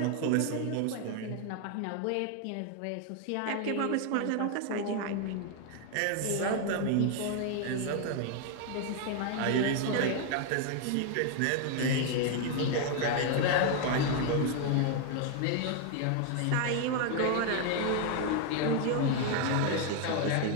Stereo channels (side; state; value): both; different; correlation 0.00